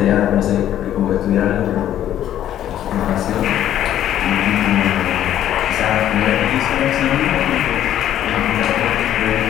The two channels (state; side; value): quieter; right; 11.5 dB